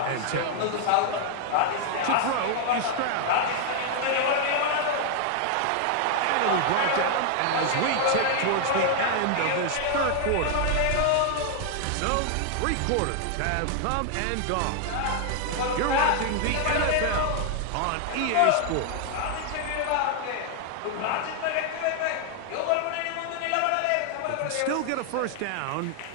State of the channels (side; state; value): both; different; correlation 0.00